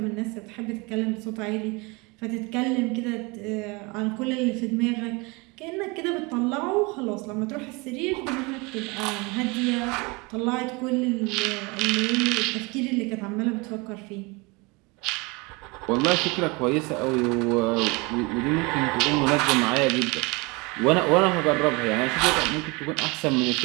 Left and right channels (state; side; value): quieter; left; 27.0 dB